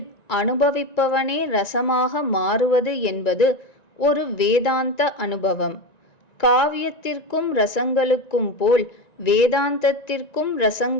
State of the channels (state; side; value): late; right; 1.9 ms